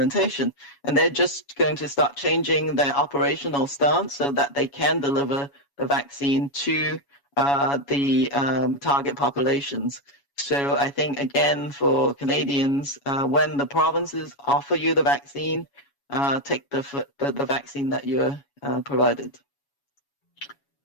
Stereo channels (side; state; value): right; late; 7.2 ms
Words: And they're just going to start changing their operational stance so that they can deliver the vaccine to the target populations. So I think, again, for Canadians, when the provinces offer you the vaccine, take the vaccine that you're provided.